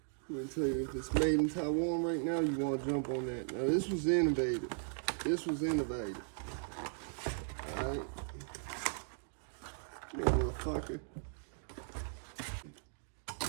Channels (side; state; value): left; silent; digital silence